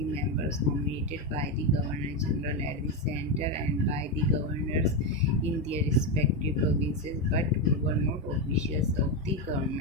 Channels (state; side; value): normal; both; correlation 0.10